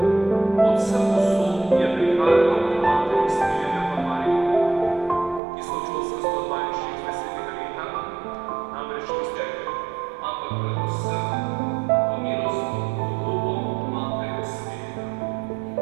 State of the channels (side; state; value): left; drops out; at 5.4 s